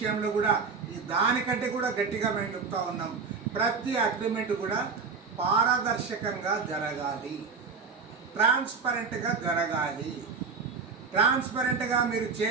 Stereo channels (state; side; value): quieter; left; 5.1 dB